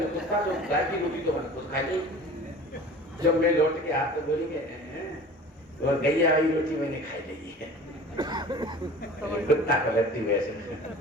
कुत्ता, तो गाय की रोटी तो मैंने खुद खाई नहीं। जब मैं लौट के आता तो बोलेंगे और गैया वाली रोटी मैंने खाई नहीं है, कुत्ता को लगती हुई ऐसे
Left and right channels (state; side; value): normal; both; correlation 0.41